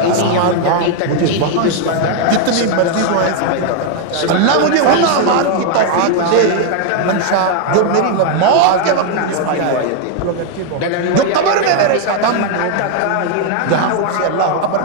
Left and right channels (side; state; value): both; different; correlation 0.00